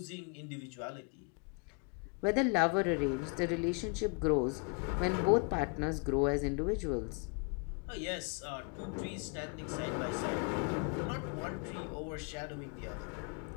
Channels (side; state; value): right; quieter; 34.1 dB